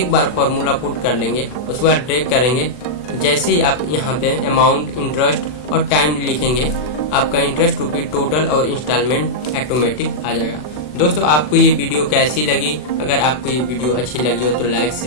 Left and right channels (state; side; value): late; right; 40 ms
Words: बार फॉर्मूला पुट कर लेंगे, उसके बाद ड्रैग करेंगे। जैसे ही आप यहाँ पे अमाउंट, इंटरेस्ट और टाइम लिखेंगे, आपका इंटरेस्ट रुपये टोटल और इंस्टॉलमेंट ऑटोमेटिक आ जाएगा। दोस्तों आपको ये वीडियो कैसी लगी? अगर आपको ये वीडियो अच्छी लगी हो तो लाइक,